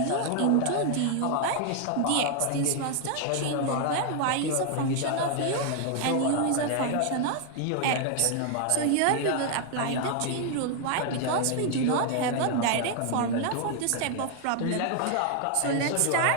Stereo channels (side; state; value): both; different; correlation 0.00